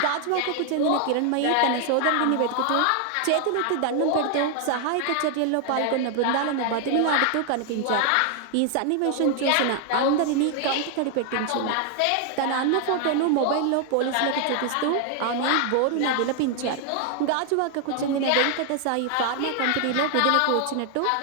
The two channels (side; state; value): both; different; correlation 0.00